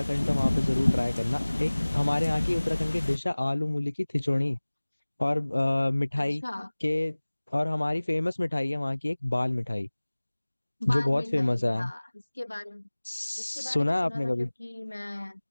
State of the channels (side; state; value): both; inverted; correlation -1.00